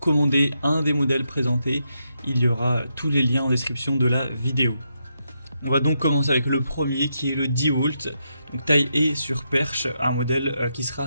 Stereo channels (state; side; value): inverted; both; correlation -0.82